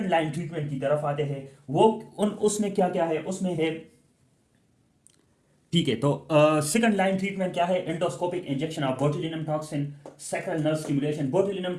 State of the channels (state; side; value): identical; both; correlation 1.00